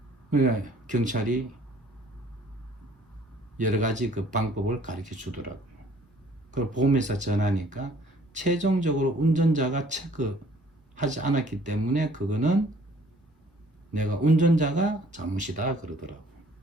그러니까 경찰이 여러 가지 그 방법을 가르쳐 주더라고요. 그걸 보험회사 전화하니까 최종적으로 운전자가 체크하지 않았기 때문에 그거는 내가 운전자가 잘못이다 그러더라고.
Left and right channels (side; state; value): both; normal; correlation 0.57